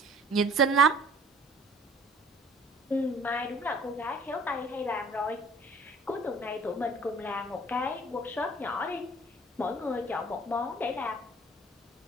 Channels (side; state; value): both; normal; correlation 0.52